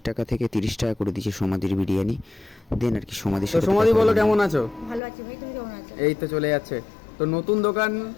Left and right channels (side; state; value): right; drops out; at 5.0 s